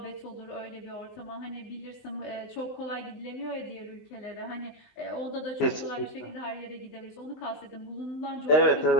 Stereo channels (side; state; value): right; late; 19 ms